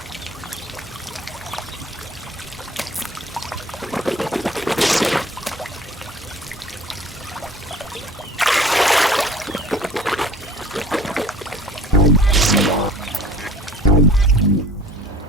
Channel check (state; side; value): normal; both; correlation 0.48